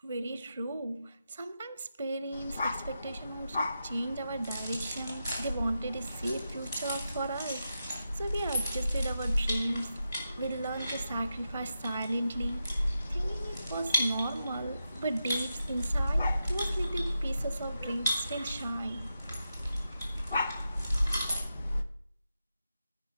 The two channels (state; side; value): inverted; both; correlation -0.88